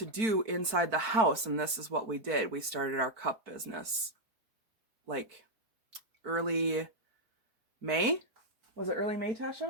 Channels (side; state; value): left; late; 4.5 ms